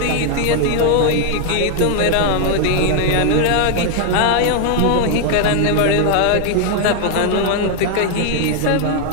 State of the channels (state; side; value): different; both; correlation 0.00